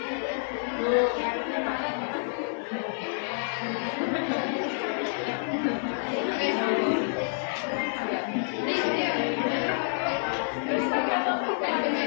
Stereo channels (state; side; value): silent; right; 59 dB below the other